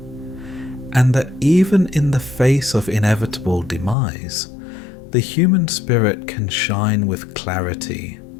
and that even in the face of inevitable demise, the human spirit can shine with clarity,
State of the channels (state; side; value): drops out; right; at 4.0 s